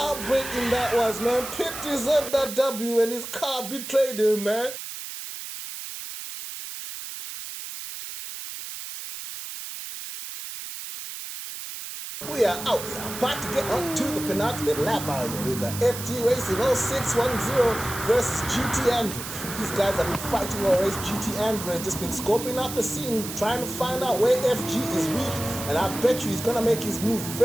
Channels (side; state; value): right; noise; hiss, 9 dB below the sound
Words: that was, man. Pitt deserved that W and his car betrayed him, man. We are out. We are about to get on to the penultimate lap out here. We got FG Racing 0610 versus GT Andrew. These guys have been fighting all race. GT Andrew has just been scoping out the scene, trying to find out where FG is weak. And I bet you he's going to make his move